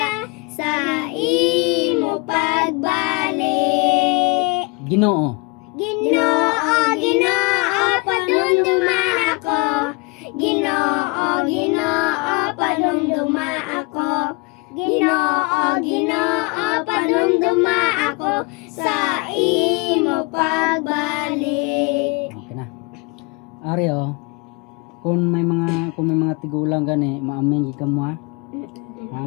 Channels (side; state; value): right; quieter; 27.2 dB